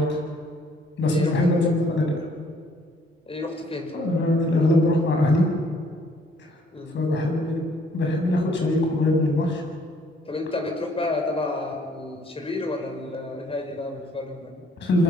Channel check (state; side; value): normal; both; correlation 0.63